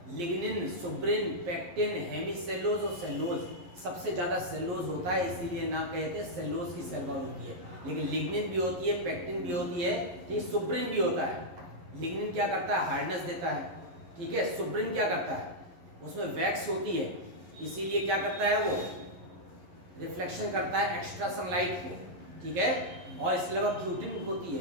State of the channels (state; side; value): late; left; 11 ms